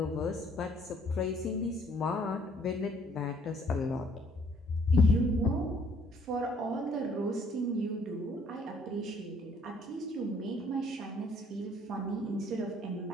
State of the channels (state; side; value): normal; both; correlation 0.62